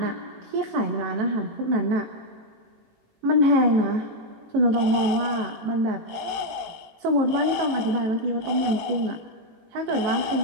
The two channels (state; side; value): late; left; 18 ms